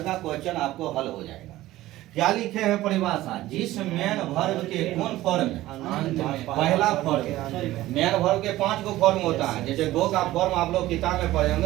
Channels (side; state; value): left; quieter; 16.1 dB